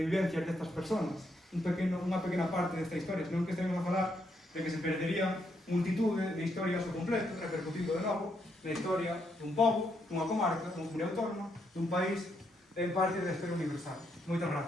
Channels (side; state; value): both; normal; correlation 0.77